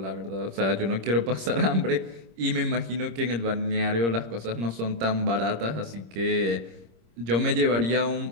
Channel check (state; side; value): late; left; 26 ms